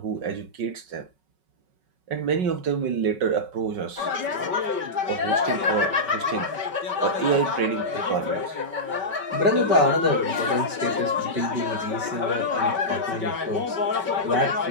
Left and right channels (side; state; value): left; late; 5.2 ms